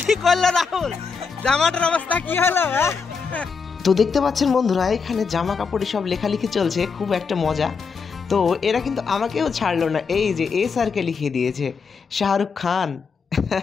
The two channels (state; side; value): quieter; right; 5.4 dB